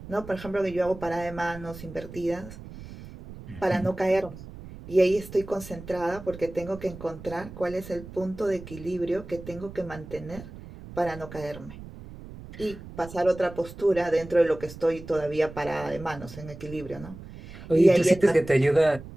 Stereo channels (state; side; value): noise; right; rumble, 14 dB below the sound